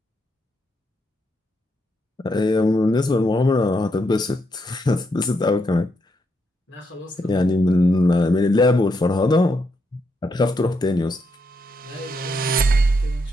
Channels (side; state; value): both; normal; correlation 0.79